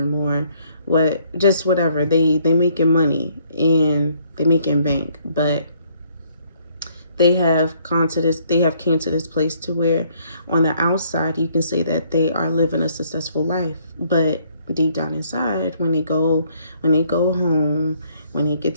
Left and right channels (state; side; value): inverted; both; correlation -0.66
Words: or whatever. They making money and they making bank, but they have came to this place to where on the outside you can say that they are living a successful life, but deep down inside, when they go home, when they get